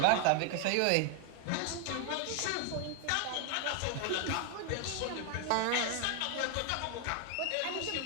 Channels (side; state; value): both; different; correlation 0.00